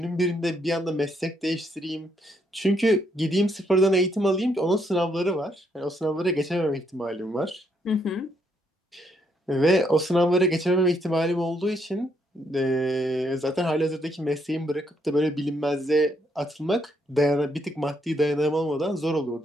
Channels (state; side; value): normal; both; correlation 0.74